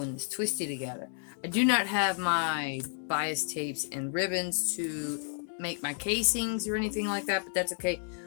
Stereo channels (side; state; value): right; silent; 57 dB below the other